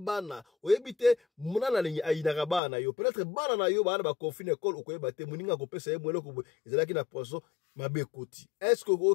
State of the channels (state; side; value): drops out; right; at 2.6 s